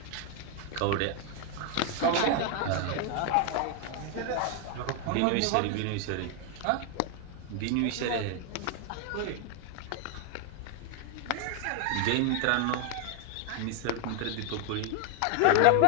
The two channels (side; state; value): both; different; correlation 0.00